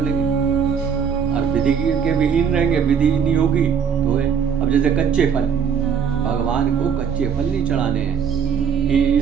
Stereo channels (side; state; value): left; quieter; 7.2 dB